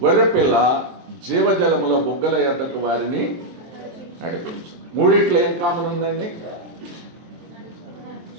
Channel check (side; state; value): left; late; 23 ms